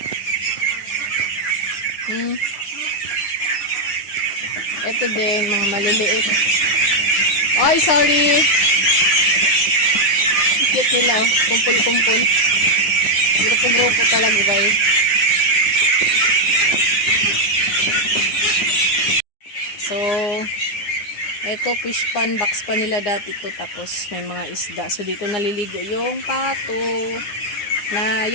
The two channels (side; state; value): right; late; 9.8 ms